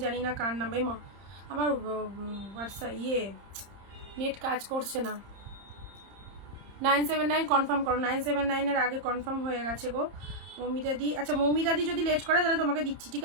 জানি না কার নাম। মা আমার হোয়াটসঅ্যাপ নেট কাজ করছে না। 979 কনফার্ম করো। 979 আগে কনফার্ম হয়ে গেছে গো মৌমিতাদি। আচ্ছা মৌমিতাদি যদি লেট করে তাহলে তোমাকে দিচ্ছি, ঠিক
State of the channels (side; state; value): left; late; 30 ms